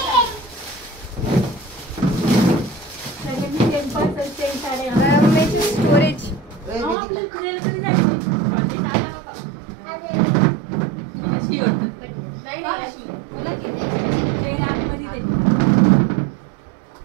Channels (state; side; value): drops out; left; at 7.0 s